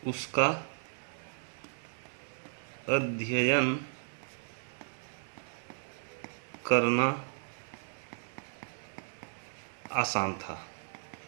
उसका अध्ययन करना आसान था।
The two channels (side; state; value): left; silent; digital silence